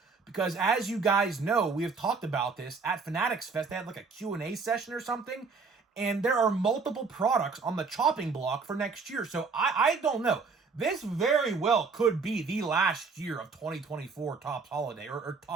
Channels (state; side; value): quieter; left; 4.7 dB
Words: because as you guys know, we have talked about this at Fanatics Fest. They had a Q&A session or something, and there are multiple products on the chopping block for next year. So I don't know. This very well could be the last year of 2024 Topps Holiday, or